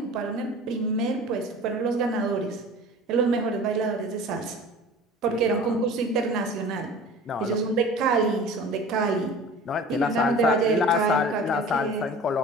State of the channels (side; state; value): both; normal; correlation 0.41